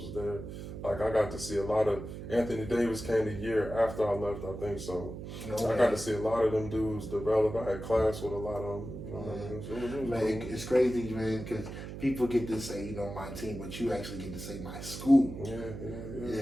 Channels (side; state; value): right; noise; hum, 9 dB below the sound